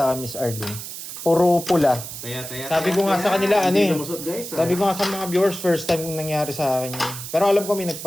akin, Miss Arlene. Puro pula. Taya. Sabi ko nga sa kanila, ano Hindi eh. lumusot, guys. Sabi ko nga sa mga viewers, first time nangyari sa akin yun. Pero alam ko may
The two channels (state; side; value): noise; right; hiss, 9 dB below the sound